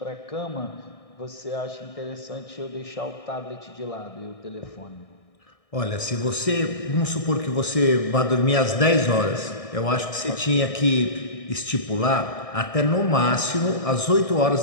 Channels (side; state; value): right; late; 1.6 ms